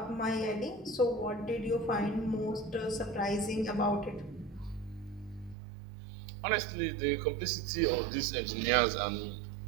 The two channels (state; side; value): drops out; left; at 5.6 s